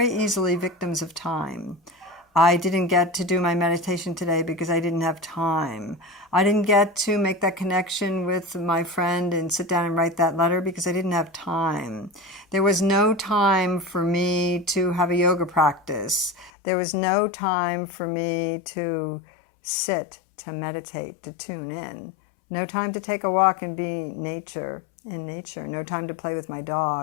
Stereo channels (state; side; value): drops out; right; at 16.5 s